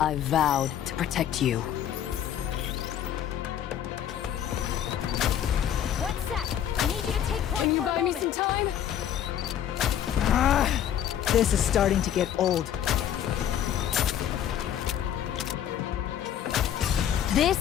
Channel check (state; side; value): quieter; right; 10.2 dB